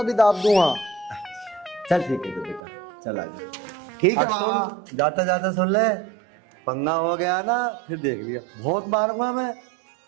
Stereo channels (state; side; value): drops out; left; at 2.6 s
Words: भी दाब दूंगा। चल ठीक है तो बेटा, चल आ जा। ठीक है और बाबा। सुन, जाता जाता सुन ले, पंगा हो गया ना फिर देख लिया, बहुत मारूंगा मैं।